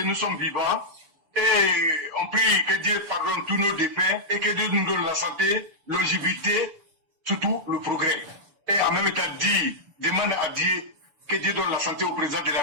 nous sommes vivants. Et on prie que Dieu pardonne tous nos défunts et que Dieu nous donne la santé, longévité, surtout le progrès. Et en même temps, demande à Dieu que Dieu donne la santé au président de la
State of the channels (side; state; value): left; late; 6.9 ms